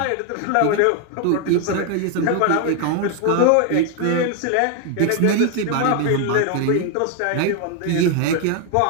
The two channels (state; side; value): different; both; correlation 0.01